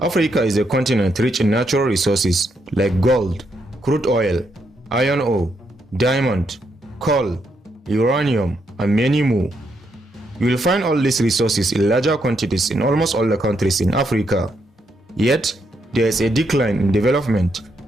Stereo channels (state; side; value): normal; both; correlation 0.78